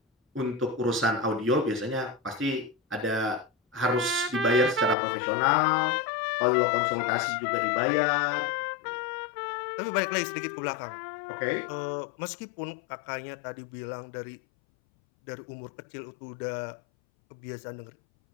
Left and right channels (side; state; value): right; drops out; at 5.0 s